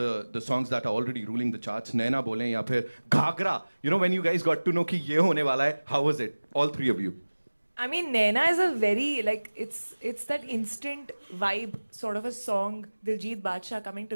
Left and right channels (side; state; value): both; inverted; correlation -1.00